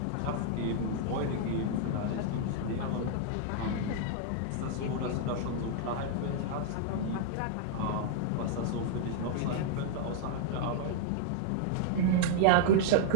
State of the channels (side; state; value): both; different; correlation -0.01